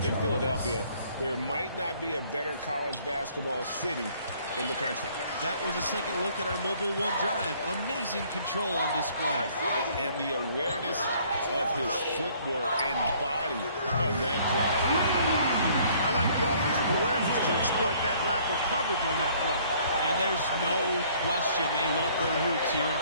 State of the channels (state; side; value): inverted; both; correlation -0.59